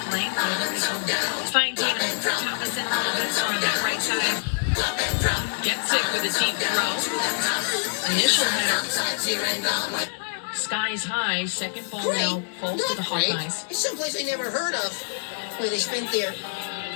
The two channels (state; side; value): silent; right; 61 dB below the other